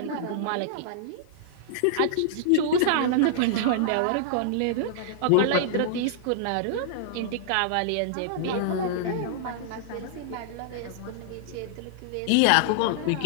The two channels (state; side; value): different; both; correlation -0.01